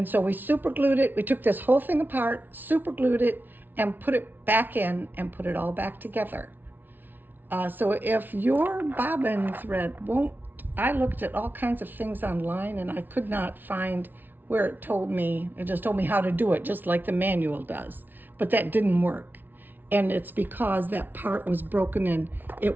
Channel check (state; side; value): late; left; 0.090 ms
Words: so we super glued it. We took this whole thing apart, super glued it, and put it back in and put it all back together. So if your bobbin thread won't, I looked at all kinds of things online and I could not find where it told me, it just told me how to do it, just like the manual does. But that didn't work. And it's because that part was broken and it